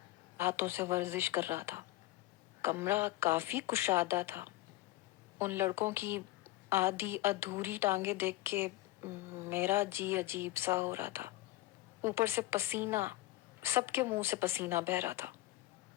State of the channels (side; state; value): right; quieter; 17.2 dB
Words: ہاتھوں سے ورزش کر رہا تھا. کمرہ کافی کشادہ تھا. ان لڑکوں کی آدھی ادھوری ٹانگیں دیکھ کے میرا جی عجیب سا ہو رہا تھا. اوپر سے پسینہ، سب کے منہ سے پسینہ بہہ رہا تھا.